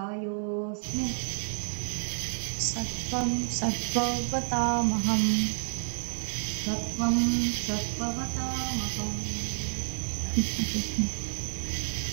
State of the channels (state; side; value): silent; left; digital silence